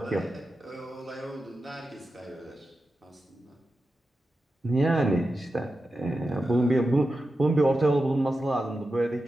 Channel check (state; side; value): normal; both; correlation 0.91